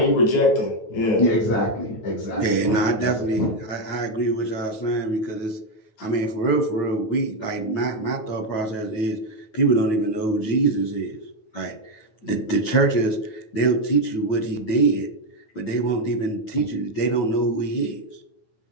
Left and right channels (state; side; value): late; right; 9.3 ms